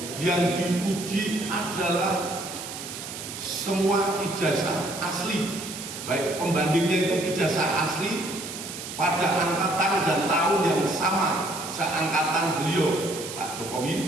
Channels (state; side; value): noise; right; hiss, 9 dB below the sound